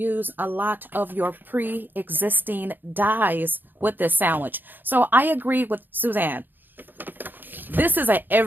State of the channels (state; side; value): late; left; 0.091 ms